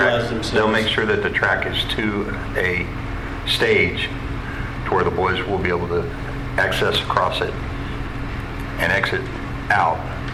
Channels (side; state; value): both; identical; correlation 1.00